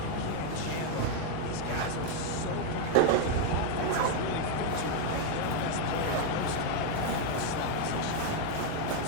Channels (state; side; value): different; both; correlation 0.01